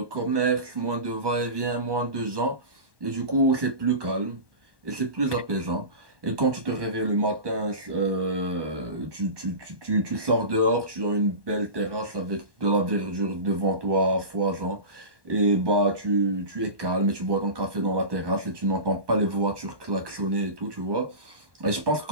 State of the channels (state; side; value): late; left; 1.1 ms